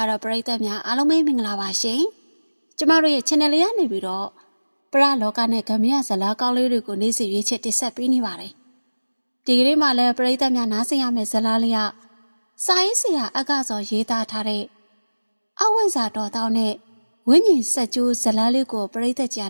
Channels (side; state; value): both; inverted; correlation -1.00